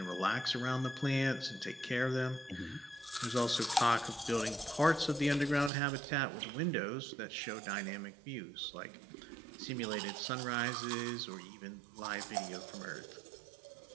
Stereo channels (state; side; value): drops out; left; at 5.7 s